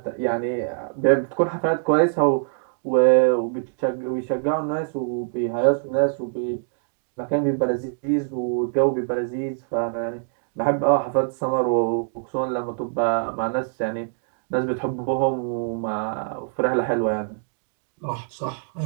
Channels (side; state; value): left; silent; digital silence